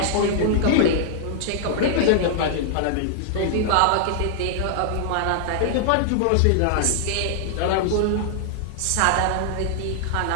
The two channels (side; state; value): both; different; correlation -0.01